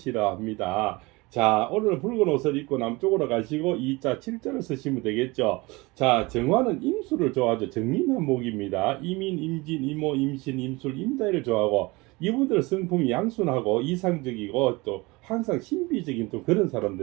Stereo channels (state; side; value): quieter; left; 23.8 dB